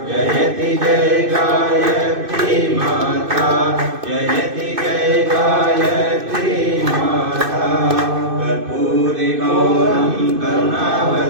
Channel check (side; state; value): left; late; 2.6 ms